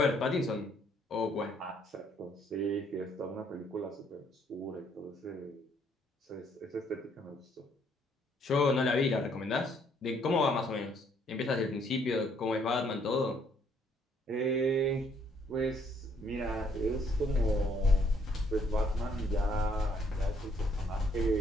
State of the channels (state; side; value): normal; both; correlation 0.67